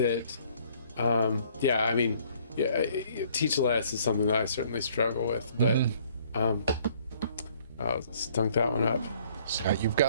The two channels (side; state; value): both; inverted; correlation -0.60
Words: teach less is something that I certainly struggle with, but I stunk that one up. Scott, you've